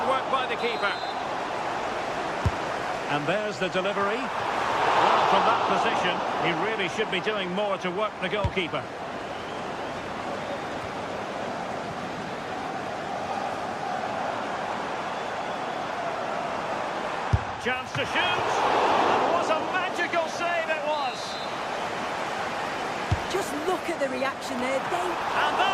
by the keeper. And there's the delivery. Well, from that position, he really should be doing more to work the goalkeeper. Chance to shoot. And what a magical save it was. Just look at the reaction there. And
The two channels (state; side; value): identical; both; correlation 1.00